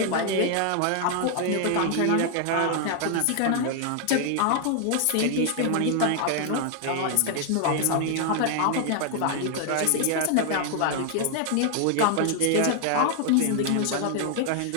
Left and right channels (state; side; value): different; both; correlation 0.00